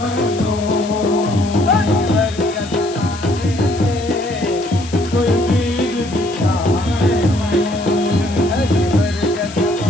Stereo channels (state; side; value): noise; left; hiss, 15 dB below the sound